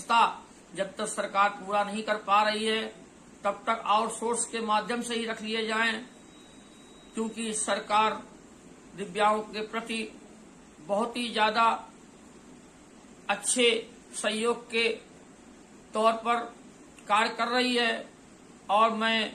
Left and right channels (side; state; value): both; identical; correlation 1.00